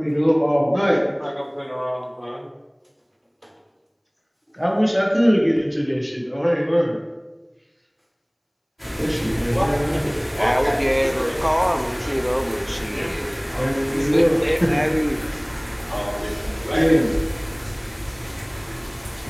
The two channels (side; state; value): both; identical; correlation 1.00